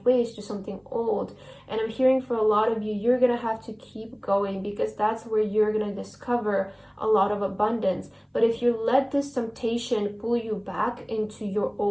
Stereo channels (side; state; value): both; identical; correlation 1.00